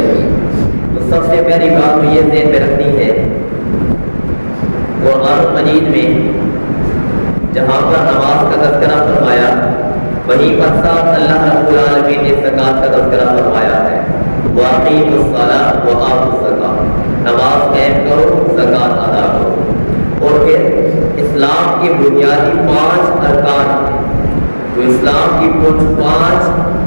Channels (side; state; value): both; inverted; correlation -1.00